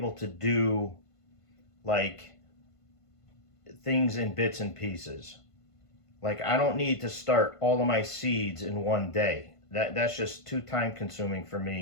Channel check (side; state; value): right; late; 1.5 ms